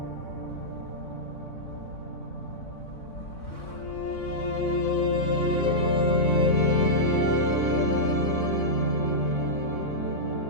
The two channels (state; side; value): late; right; 3.6 ms